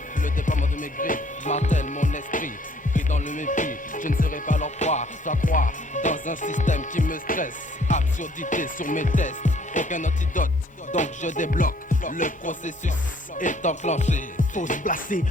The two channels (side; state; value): both; normal; correlation 0.61